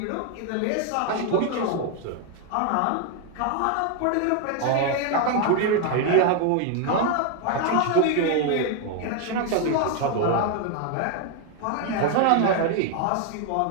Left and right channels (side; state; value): both; different; correlation 0.01